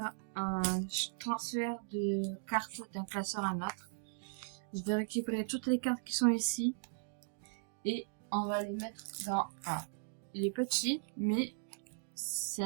un transfert de cartes d'un classeur à un autre. Je vais récupérer toutes les cartes qui sont ici et on va les mettre dans... il est petit, mais c'est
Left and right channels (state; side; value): silent; left; digital silence